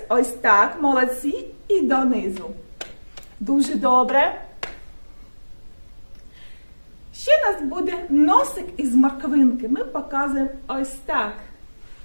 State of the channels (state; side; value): inverted; both; correlation -1.00